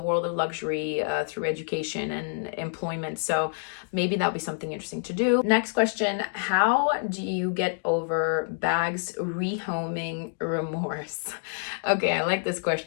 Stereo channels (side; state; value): right; silent; digital silence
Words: world of luxury through education and employment. So maybe that'll be something interesting to do. Next question, how do you get over bags rehoming remorse? Okay, I like this